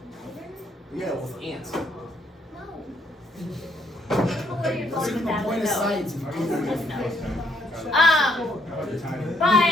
Lighter? Yeah, with ants. No. I don't know where you're going with that, but no. science. Just no.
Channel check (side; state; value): both; normal; correlation 0.70